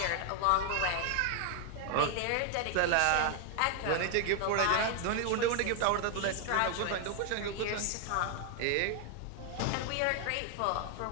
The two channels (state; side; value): different; both; correlation 0.00